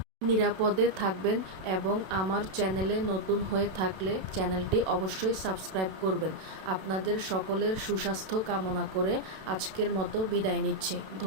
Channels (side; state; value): left; late; 32 ms